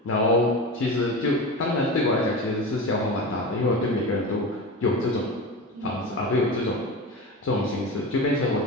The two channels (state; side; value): normal; both; correlation 0.27